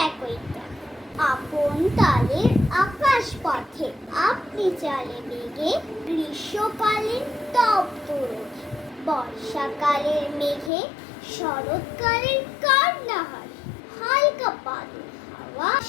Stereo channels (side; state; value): right; drops out; at 10.7 s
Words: একই গান। আপন তালের আকাশ পথে আপনি চালে বেগে, গ্রীষ্মকালীন তপ্ত রোদে, বর্ষাকালের মেঘে, শরৎকালের কান্না হাসি, হালকা বাদল হাওয়া